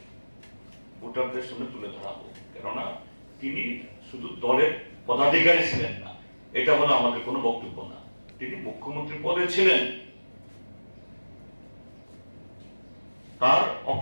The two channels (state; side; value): inverted; both; correlation -1.00